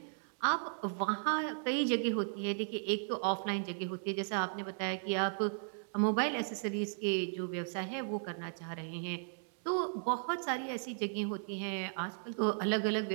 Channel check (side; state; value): left; silent; digital silence